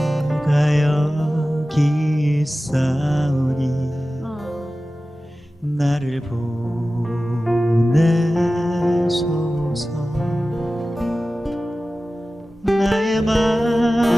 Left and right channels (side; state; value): both; normal; correlation 0.95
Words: 여기 있사오니 나를 보내소서. 나의